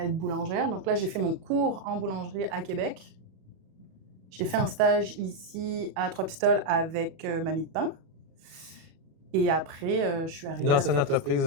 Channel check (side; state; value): left; late; 37 ms